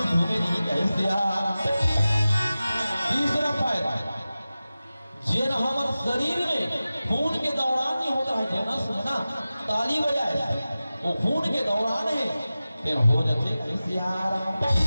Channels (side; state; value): both; inverted; correlation -0.95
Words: घूमे नहीं कहीं से आ रहा। तीसरा फायदा जेन हमारे शरीर में खून के दौरान नहीं होता है जनस में ना ताली बजाए वो खून के दौरान है फिर हो जाते ऐसे आराम।